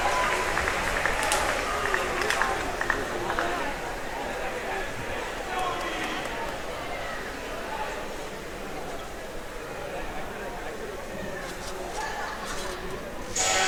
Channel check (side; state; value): both; identical; correlation 1.00